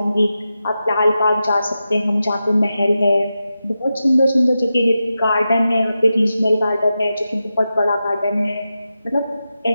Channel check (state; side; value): inverted; both; correlation -0.90